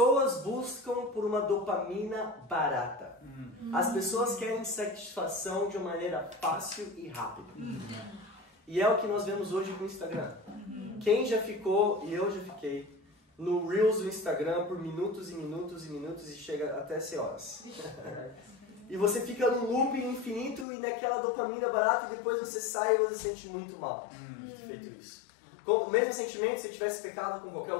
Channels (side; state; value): right; drops out; at 20.7 s